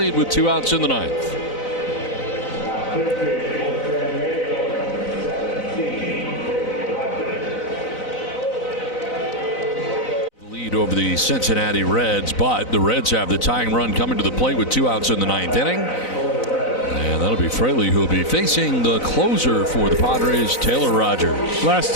with 2 outs in the 9th. Lead over the Cincinnati Reds, but the Reds have the tying run coming to the plate with 2 outs in the 9th inning. And that'll be Fraley, who will be facing the closer for the Padres, Taylor Rogers. Last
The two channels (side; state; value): right; late; 4.0 ms